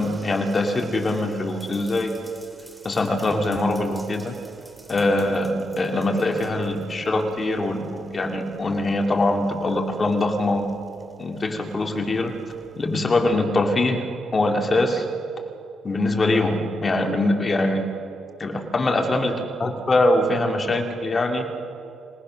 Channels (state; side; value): normal; both; correlation 0.86